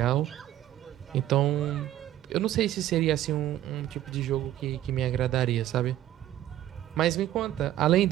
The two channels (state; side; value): quieter; left; 13.2 dB